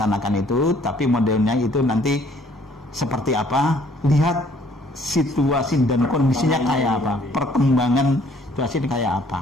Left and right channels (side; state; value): both; normal; correlation 0.61